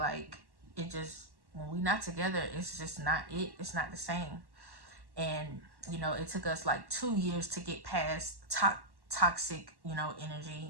it just, when we not together, it's just not it. It's not the same. And, you know, it took us like 2 years to get past toxic, you know,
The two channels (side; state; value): left; late; 1.1 ms